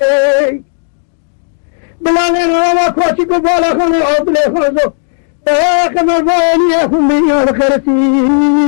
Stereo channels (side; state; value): right; silent; digital silence